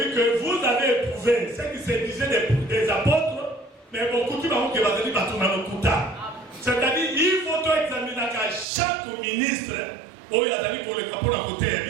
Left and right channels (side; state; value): left; drops out; at 8.7 s